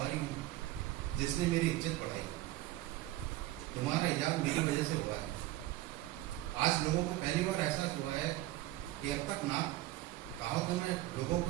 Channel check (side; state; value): left; quieter; 16.8 dB